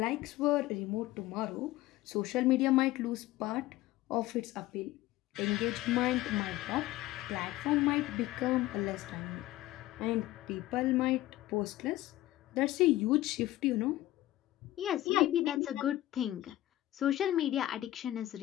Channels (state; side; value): quieter; right; 15.9 dB